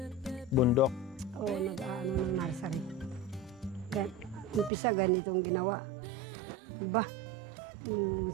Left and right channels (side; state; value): left; drops out; at 4.7 s